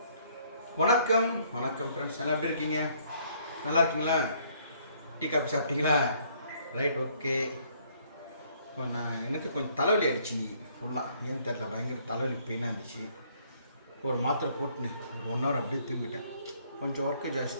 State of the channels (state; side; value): inverted; both; correlation -0.64